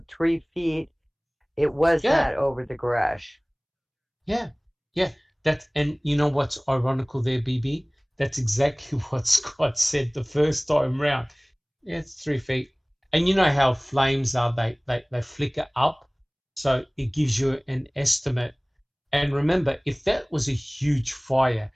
3 feet. It was not over the garage. Yeah. And you know what's ironical there, BB? That's exactly what Scott said the first time round. Yeah, it's 3 feet. And you know how flames are, they flicker up. So it gives you an estimate. And remember, if that was a huge fire,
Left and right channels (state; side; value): identical; both; correlation 1.00